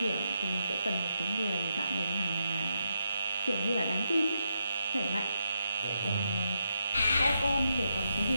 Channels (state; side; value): inverted; both; correlation -0.83